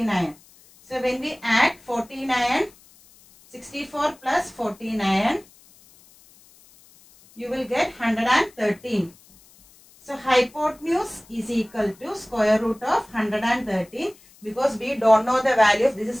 So when we add 49, 64 plus 49, you will get 113. So hypotenuse is equal to square root of 113, because we don't know the value of this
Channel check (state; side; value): noise; left; hiss, 27 dB below the sound